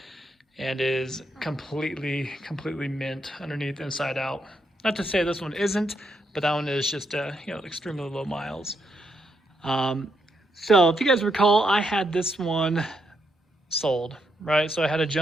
and is completely mint underneath, inside out. Not to say this one isn't, but that one is just extremely low miles. So if you guys recall, I had this one sold, right? So I had a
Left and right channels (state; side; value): normal; both; correlation 0.79